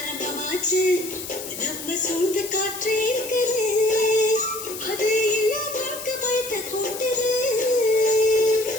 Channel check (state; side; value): noise; left; hiss, 10 dB below the sound